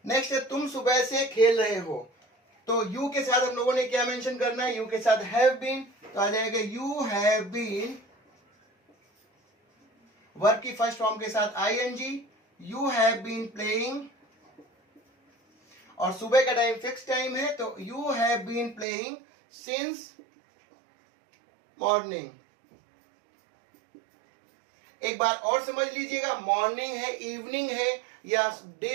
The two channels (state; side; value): drops out; left; at 18.9 s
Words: Next है तुम सुबह से खेल रहे हो, तो यू के साथ हम लोगों ने क्या मेंशन करना है, यू के साथ हैव बीन, तो आ जाएगा यू हैव बीन, वर्ब की फर्स्ट फॉर्म के साथ ING, you have been playing, और सुबह का टाइम फिक्स टाइम है तो you have been playing since morning. एक बार और समझ लीजिएगा, मॉर्निंग है, इवनिंग है, या